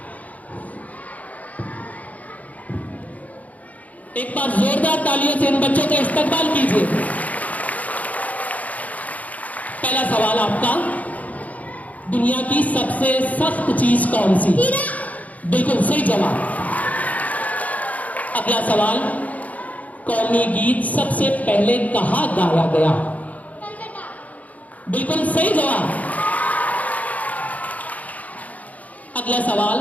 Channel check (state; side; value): late; right; 0.073 ms